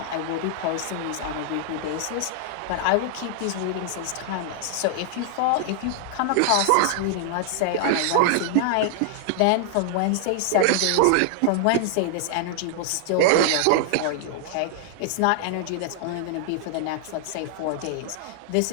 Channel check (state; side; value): different; both; correlation -0.01